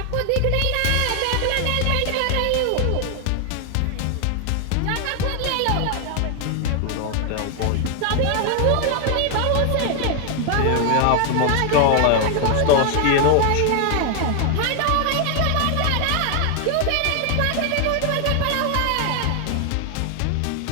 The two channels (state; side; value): different; both; correlation 0.00